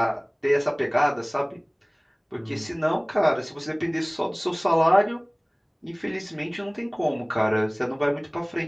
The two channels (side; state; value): both; identical; correlation 1.00